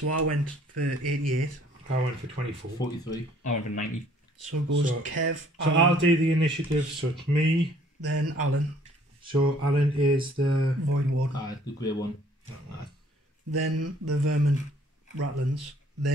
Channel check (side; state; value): both; normal; correlation 0.59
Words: I went for 88. I went for 24. 43. I went for 90. So it goes So- Kev, So Alan, I'll do the initiative. So it's me. then Alan, So Alan is the. Void Ward, The grey one. then the vermin Ratlins,